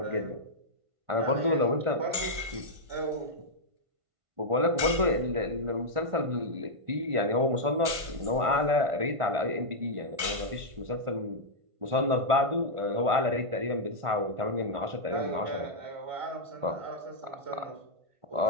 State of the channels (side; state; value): left; late; 1.5 ms